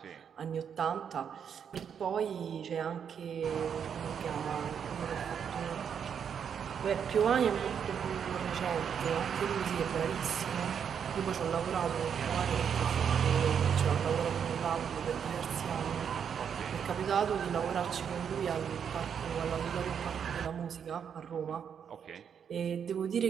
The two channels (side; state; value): left; quieter; 7.7 dB